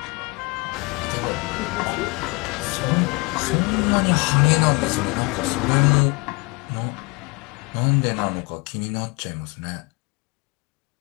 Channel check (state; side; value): quieter; right; 27.6 dB